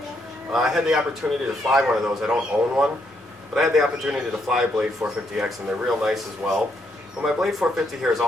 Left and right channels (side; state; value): both; normal; correlation 0.75